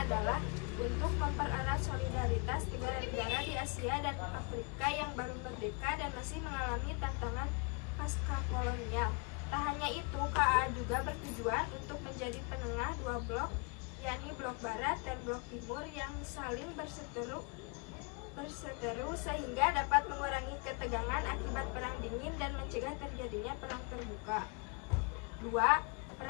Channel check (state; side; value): quieter; right; 32.1 dB